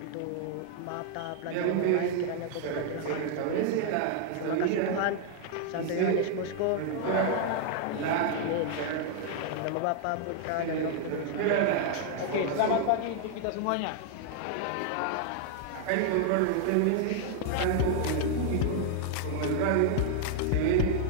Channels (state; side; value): different; both; correlation 0.00